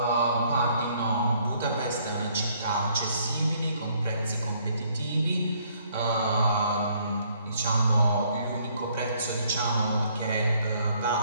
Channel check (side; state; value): both; inverted; correlation -0.66